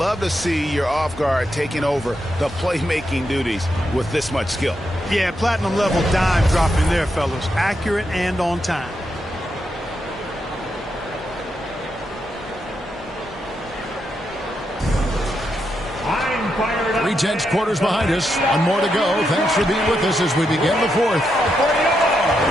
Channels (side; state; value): both; normal; correlation 0.83